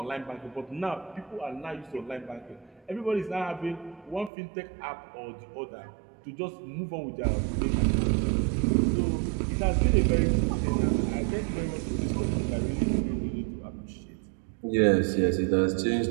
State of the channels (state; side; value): drops out; left; at 4.3 s